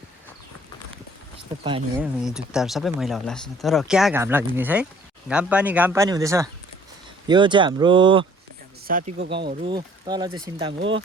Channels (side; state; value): both; normal; correlation 0.56